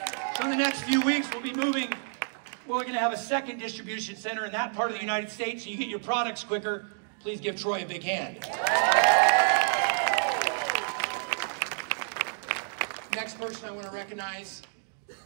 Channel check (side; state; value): left; silent; digital silence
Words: So in the next few weeks, we'll be moving. We're going to have a second distribution center in that part of the United States so you get your products quicker. Please give Troy a big hand. Next person I want to recognize